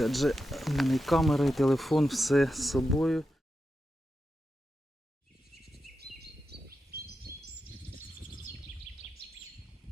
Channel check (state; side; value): normal; both; correlation 0.89